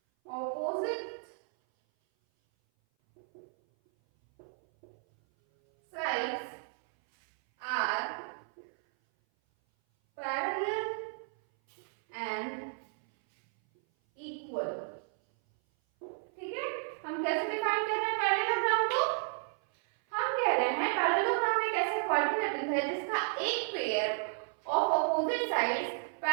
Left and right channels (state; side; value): silent; left; 56 dB below the other